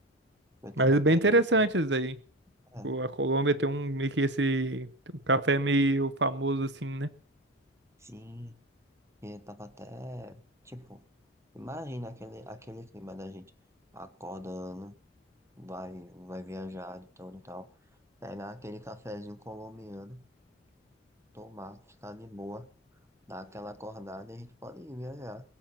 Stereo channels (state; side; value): normal; both; correlation 0.24